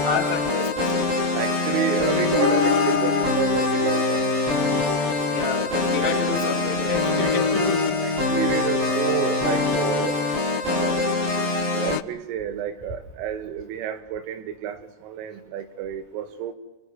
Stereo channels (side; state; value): left; late; 27 ms